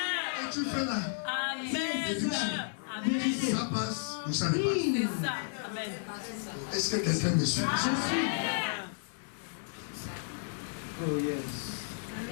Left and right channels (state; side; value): silent; right; 56 dB below the other